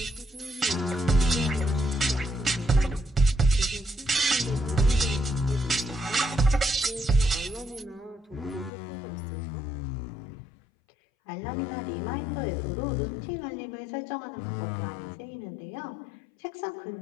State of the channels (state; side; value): drops out; right; at 8.7 s